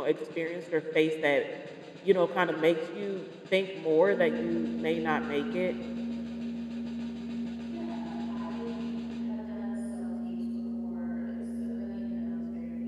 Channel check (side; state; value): both; identical; correlation 1.00